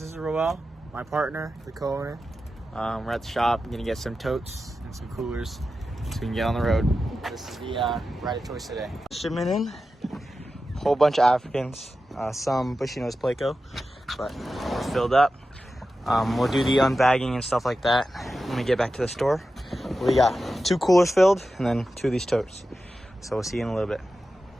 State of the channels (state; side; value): normal; both; correlation 0.92